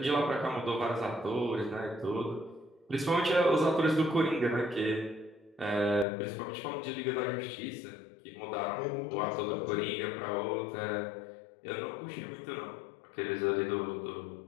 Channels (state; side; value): drops out; right; at 6.1 s